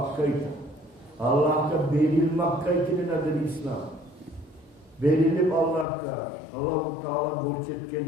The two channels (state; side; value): drops out; right; at 5.9 s